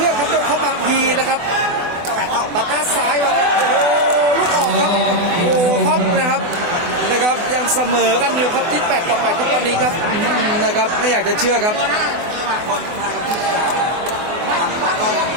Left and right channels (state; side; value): late; left; 24 ms